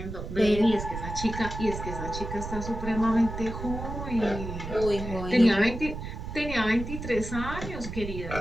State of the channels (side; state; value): right; noise; rumble, 7 dB below the sound